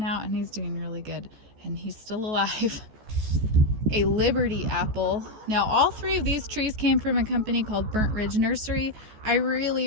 out and he's doing really good, and he's still alive. A Liberty apple. Now all 3 of these trees came from a company called Burnt Ridge Nursery. I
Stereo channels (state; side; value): late; left; 14 ms